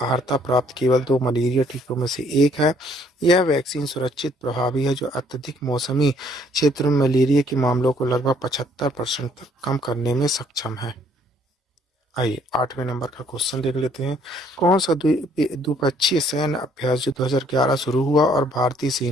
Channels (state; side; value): normal; both; correlation 0.63